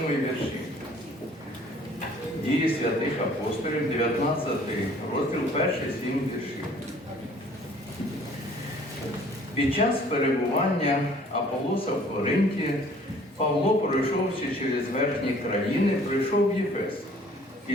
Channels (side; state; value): both; normal; correlation 0.54